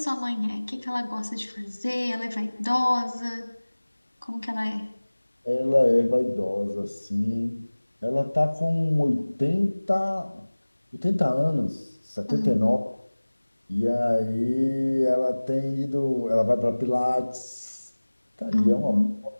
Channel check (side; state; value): both; inverted; correlation -1.00